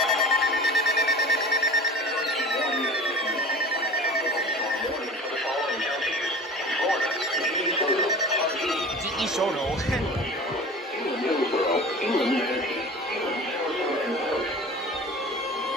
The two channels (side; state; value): both; normal; correlation 0.39